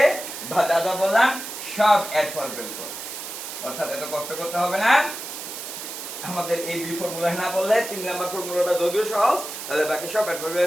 বা দাদা বললাম সব অ্যাডভার্বিয়াল ক্লজ, অর্থাৎ এত কষ্ট করতে হবে না। আমাদের এই দুই ফর্মুলা না বললে 3 নাম্বার ফর্মুলাটা যদিও সহজ, তাহলে বাকি সব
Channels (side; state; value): right; noise; hiss, 8 dB below the sound